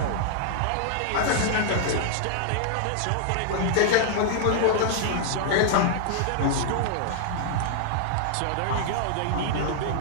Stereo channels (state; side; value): different; both; correlation -0.01